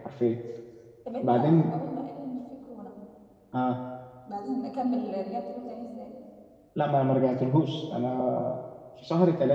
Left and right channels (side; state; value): both; identical; correlation 1.00